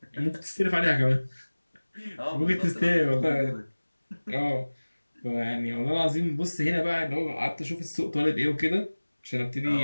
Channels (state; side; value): inverted; both; correlation -1.00